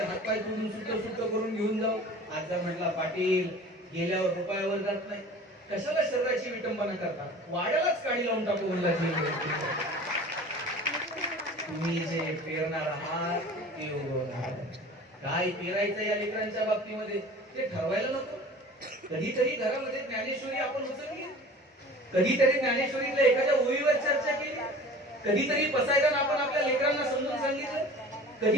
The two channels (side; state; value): both; normal; correlation 0.42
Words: हातपाय तोडून सुट्ट सुट्ट करून घेऊन जाऊ. आजा म्हटला पाटील गेल्यावर रुपयावर जात नाही, कशाला शरीराची विटंबना करता, वाड्यालाच काढी लावून टाकू म्हणला. तुम्ही जे पेरणार आहात ते उगवणार. काय पेरायचं या लेकरांच्या बाबतीमध्ये ते ठरवायला नको. कधीतरी घरामध्ये ज्ञानेश्वरी आपण उचलली, कधीतरी ज्ञानेश्वरीतल्या एखाद्या ओळीवर चर्चा केली, कधीतरी पसायदान आपण आपल्या लेकरांना समजून सांगितलं,